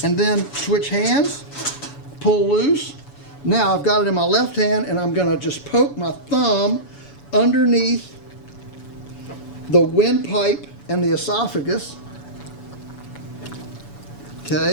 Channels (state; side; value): late; right; 7.0 ms